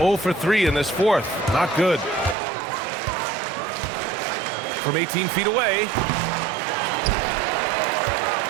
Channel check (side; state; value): left; drops out; at 2.4 s